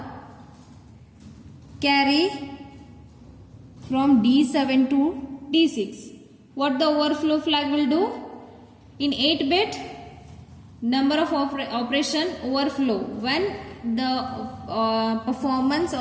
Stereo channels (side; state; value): both; identical; correlation 1.00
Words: carry from D7 to D6, what the overflow flag will do? In 8-bit, number of operation overflow. When the performance